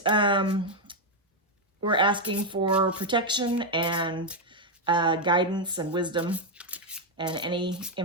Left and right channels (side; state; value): both; normal; correlation 0.02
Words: we're asking for protection and guidance and wisdom and any